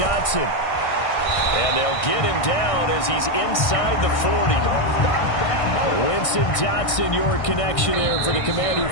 And they'll get him down as he's inside the 40. Winston Dotson, your connection there for the Commander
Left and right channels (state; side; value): late; right; 1.6 ms